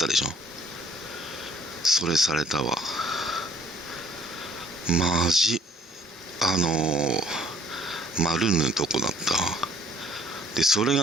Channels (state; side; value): normal; both; correlation 0.58